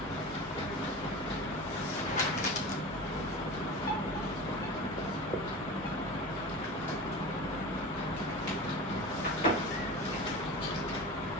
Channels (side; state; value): both; normal; correlation 0.31